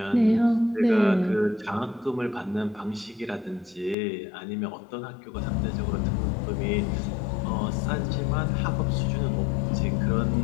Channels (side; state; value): right; drops out; at 4.0 s